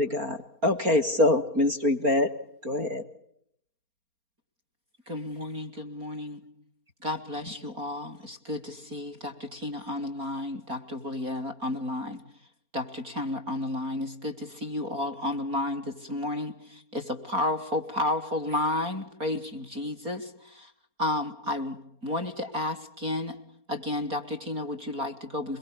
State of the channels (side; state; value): left; late; 4.3 ms